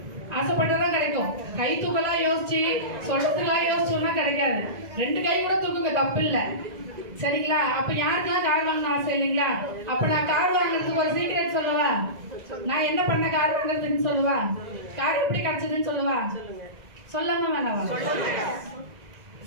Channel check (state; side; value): late; left; 2.0 ms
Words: ஆசைப்பட்டதான் கிடைக்கும். கை தூக்கலாம் யோசிச்சு சொல்றதுக்கெல்லாம் யோசிச்சோம்னா கிடைக்காது. 2 கை கூட தூக்குங்க, தப்பு இல்லை சரிங்களா. அப்ப யாருக்கெல்லாம் கார் வாங்கணும் ஆசை இல்லைங்களா. அப்ப நான் கார் வாங்குறதுக்கு ஒரு சீக்ரெட் சொல்லவா, நான் என்ன பண்ண கார் வாங்குறதுன்னு சொல்லவா, கார் எப்படி கிடைச்சதுன்னு சொல்லவா, சொல்லாம வேணாவா,